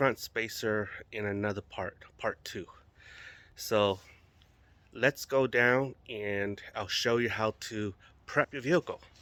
spacer in another part 2. So let's go down and I'll show you how to prep your vehicle.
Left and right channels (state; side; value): identical; both; correlation 1.00